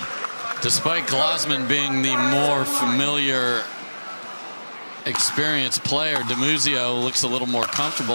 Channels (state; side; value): inverted; both; correlation -1.00